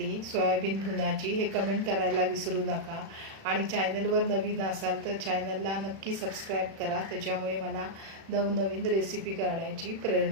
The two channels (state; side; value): late; left; 36 ms